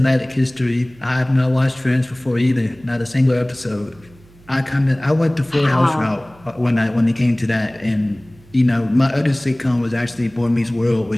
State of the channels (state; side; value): noise; right; hum, 26 dB below the sound